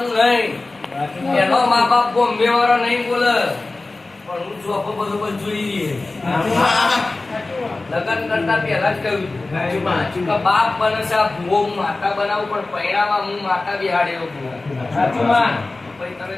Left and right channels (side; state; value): right; quieter; 3.2 dB